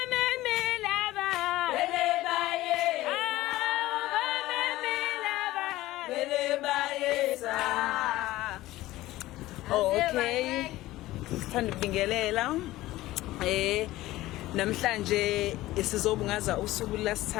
Okay, sithanda ukubingelela namhlanje sizobungaza usuku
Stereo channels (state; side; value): quieter; right; 16.9 dB